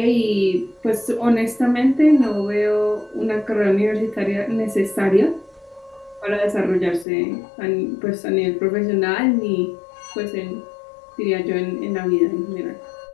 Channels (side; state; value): right; drops out; at 7.1 s